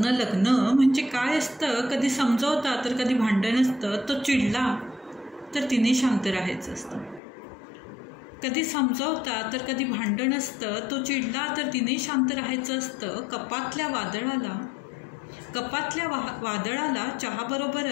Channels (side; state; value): right; drops out; at 7.2 s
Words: लग्न म्हणजे काय असतं। कधी समजवता तर कधी भांडण असतं, तो चिडला तर तिने शांत राहायचं असतं। कधी समजवता तर कधी भांडण असतं, तो चिडला तर तिने शांत राहायचं असतं। कपातल्या वादळाला